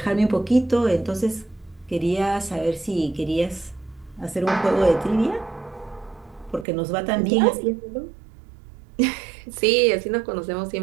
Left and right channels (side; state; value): left; drops out; at 6.7 s